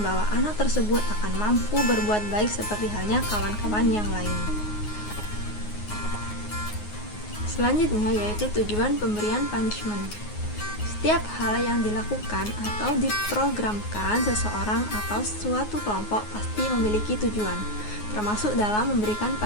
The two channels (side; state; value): right; late; 9.5 ms